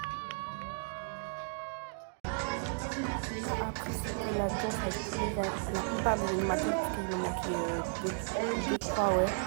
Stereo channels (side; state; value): left; silent; digital silence